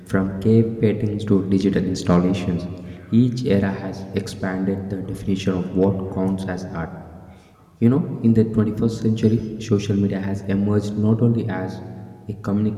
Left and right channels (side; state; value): both; identical; correlation 1.00